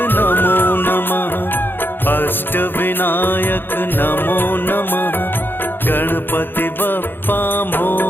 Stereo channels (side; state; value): right; late; 0.099 ms